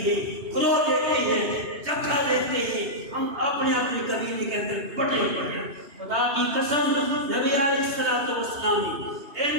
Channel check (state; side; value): late; left; 3.2 ms